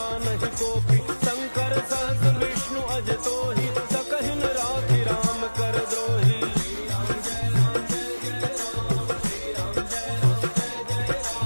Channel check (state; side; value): inverted; both; correlation -1.00